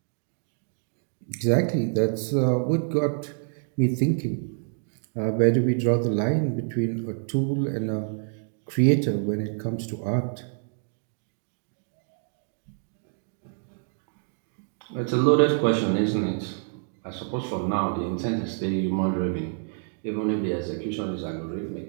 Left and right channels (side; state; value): left; silent; 60 dB below the other